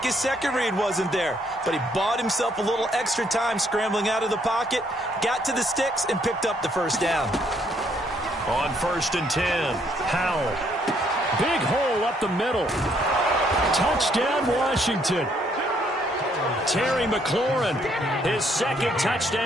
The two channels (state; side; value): normal; both; correlation 0.69